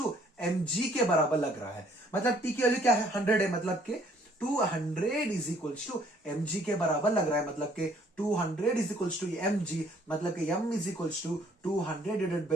mg के बराबर लग रहा है, मतलब T की वैल्यू क्या है 100 है, मतलब के 200 इज इक्वल टू mg के बराबर लग रहा है, मतलब के 200 इज इक्वल टू mg, मतलब के m is equal to 200 divided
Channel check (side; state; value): both; normal; correlation 0.62